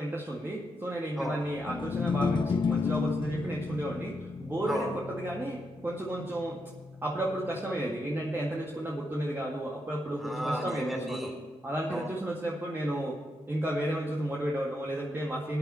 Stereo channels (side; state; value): both; normal; correlation 0.82